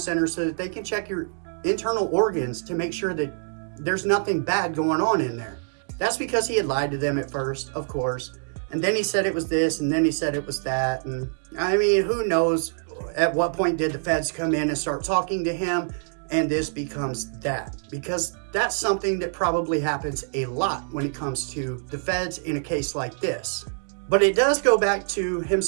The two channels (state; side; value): silent; left; digital silence